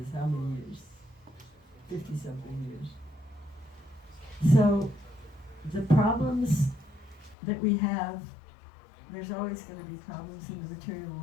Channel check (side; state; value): right; drops out; at 7.4 s